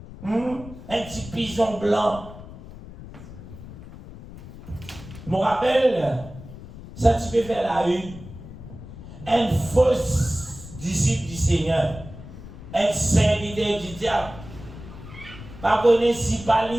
Un petit pigeon blanc. Je me rappelle, ça tu peux faire la une. Un faux disciple du Seigneur. Un serviteur du diable. Pas connaître si pas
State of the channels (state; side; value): noise; left; rumble, 15 dB below the sound